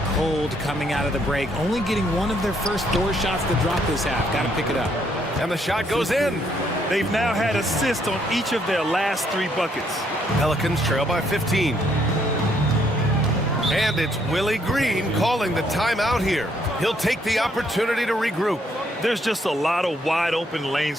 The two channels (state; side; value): normal; both; correlation 0.70